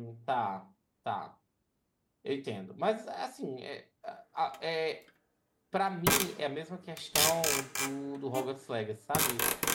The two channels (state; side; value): identical; both; correlation 1.00